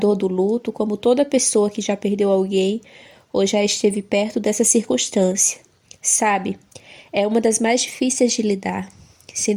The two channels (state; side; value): identical; both; correlation 1.00